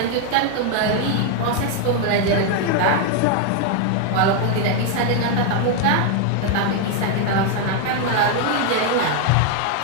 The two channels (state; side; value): different; both; correlation 0.00